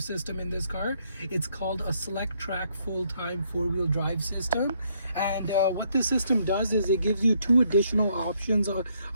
system in this car. It's called a Select Track full-time four-wheel drive system, and what this system does is it gives you two additional options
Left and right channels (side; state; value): both; inverted; correlation -0.71